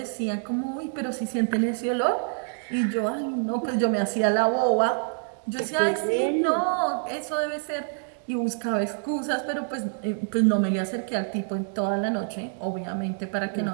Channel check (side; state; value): left; silent; 61 dB below the other